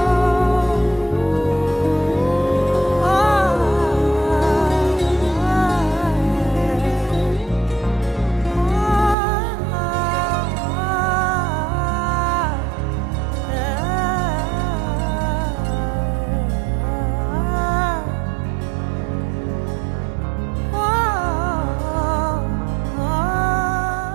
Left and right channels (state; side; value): drops out; left; at 9.2 s